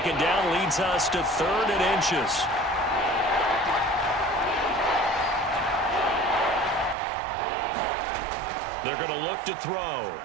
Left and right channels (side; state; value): left; drops out; at 7.0 s